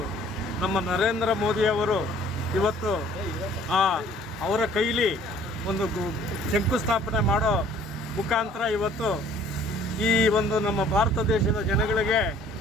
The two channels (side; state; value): both; normal; correlation 0.55